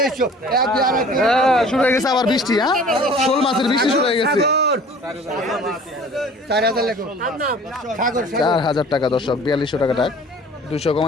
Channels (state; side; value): normal; both; correlation 0.47